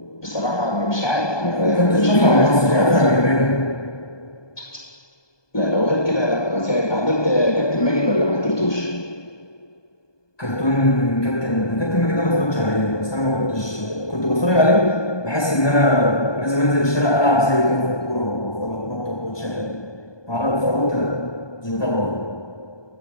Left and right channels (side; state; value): right; late; 1.2 ms